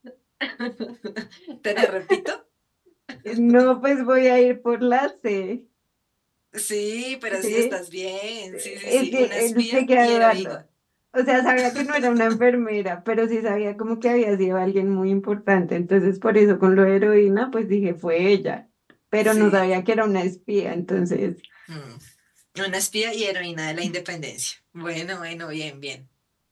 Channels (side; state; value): both; identical; correlation 1.00